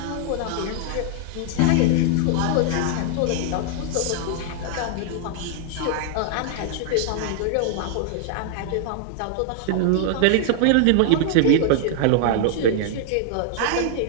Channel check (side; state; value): both; different; correlation -0.01